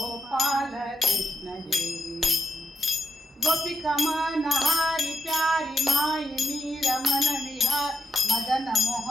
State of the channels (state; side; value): normal; both; correlation 0.84